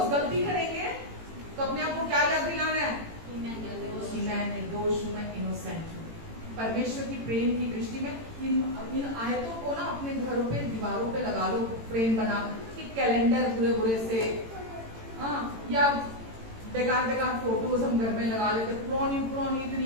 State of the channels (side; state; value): left; late; 18 ms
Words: गलती करेंगे तो अपने आप को क्या याद दिलाना है? निर्दोष हूँ, मैं इनोसेंट हूँ। परमेश्वर की प्रेम की दृष्टि में इन आयतों को ना अपने घरों पे दीवारों पे लगा लो, फ्रेम बना कि कैलेंडर बुरे बुरे से, हाँ, या बेकार बेकार फोटोज हम घर में लगा लेते, पुरानी पुरानी